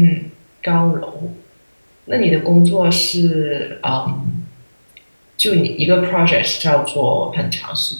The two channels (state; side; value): inverted; both; correlation -1.00